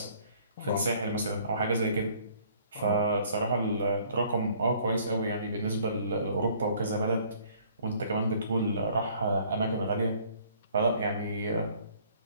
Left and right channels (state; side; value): inverted; both; correlation -0.58